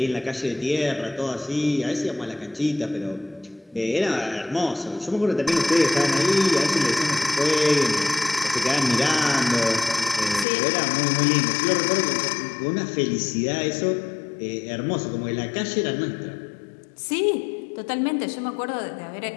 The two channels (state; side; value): drops out; right; at 10.5 s